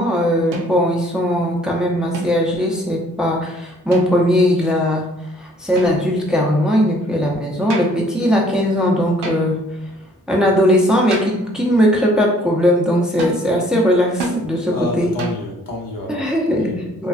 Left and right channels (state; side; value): normal; both; correlation 0.60